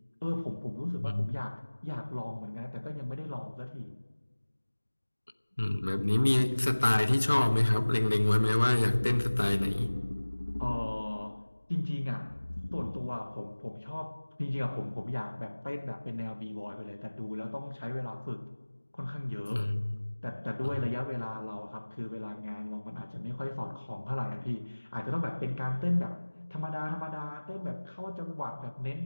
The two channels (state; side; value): inverted; both; correlation -1.00